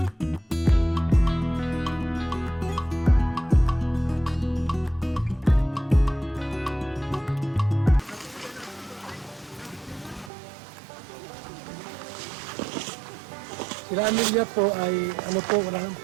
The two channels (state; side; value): drops out; left; at 10.3 s